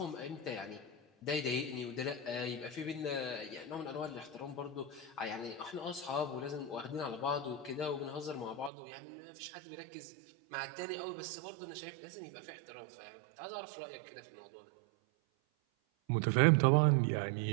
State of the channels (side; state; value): left; drops out; at 8.7 s